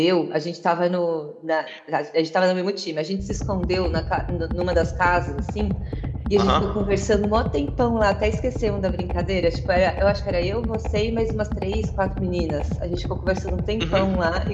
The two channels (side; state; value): both; identical; correlation 1.00